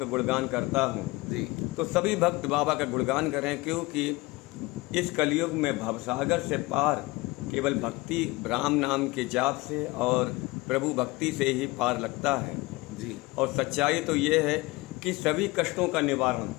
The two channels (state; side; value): quieter; right; 22.3 dB